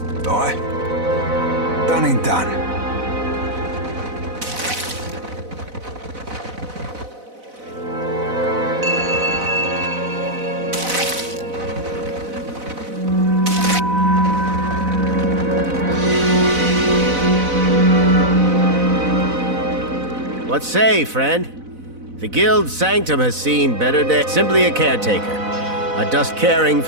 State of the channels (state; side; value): late; left; 4.0 ms